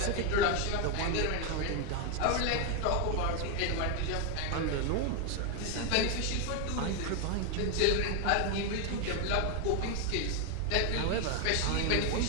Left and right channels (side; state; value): both; different; correlation 0.01